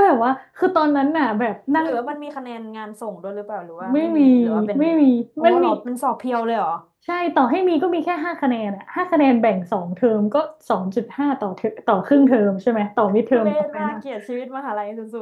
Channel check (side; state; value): both; identical; correlation 1.00